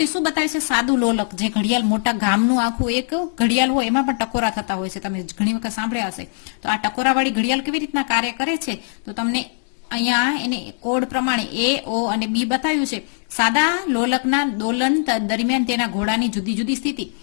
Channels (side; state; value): right; silent; 65 dB below the other